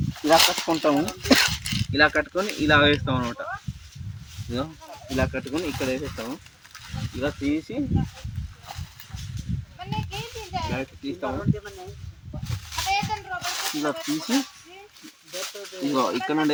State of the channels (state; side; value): identical; both; correlation 1.00